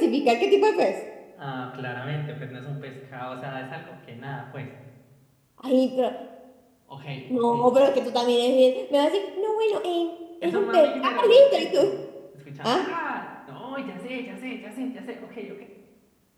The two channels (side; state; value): both; identical; correlation 1.00